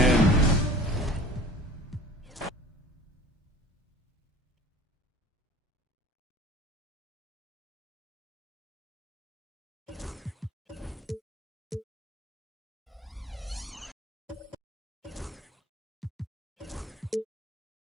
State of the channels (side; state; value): both; normal; correlation 0.45